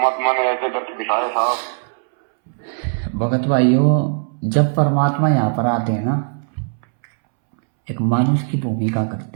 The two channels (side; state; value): left; silent; 66 dB below the other